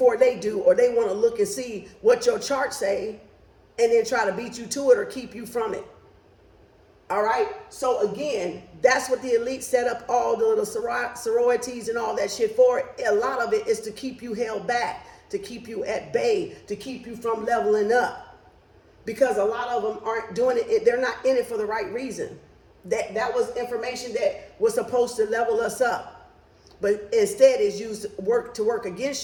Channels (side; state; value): both; identical; correlation 1.00